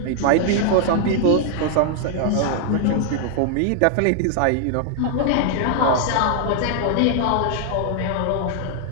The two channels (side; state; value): both; different; correlation 0.00